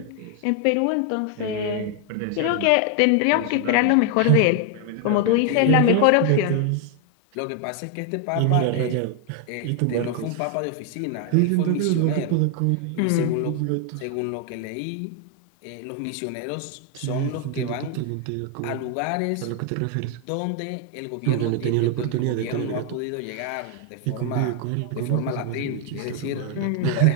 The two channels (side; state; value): both; different; correlation 0.01